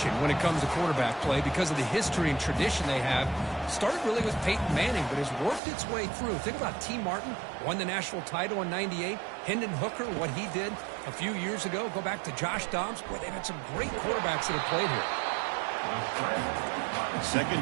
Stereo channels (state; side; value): drops out; left; at 5.6 s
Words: when it comes to quarterback play because of the history and tradition they have. Started really with Peyton Manning, but has worked its way through. Think about T. Martin, won the national title in '98. Hendon Hooker, what he did a few years ago. Go back to Josh Dobbs. Boy, they've had some great quarterbacks that have played here.